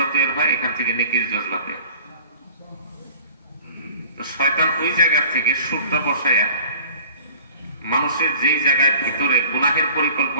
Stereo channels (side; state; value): both; inverted; correlation -0.46